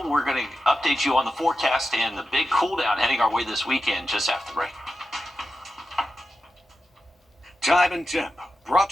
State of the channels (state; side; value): normal; both; correlation 0.90